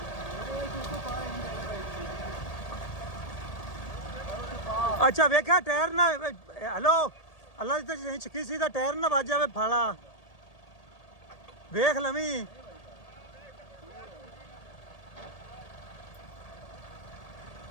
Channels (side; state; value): right; late; 1.8 ms